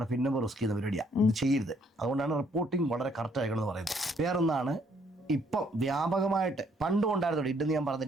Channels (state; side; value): normal; both; correlation 0.67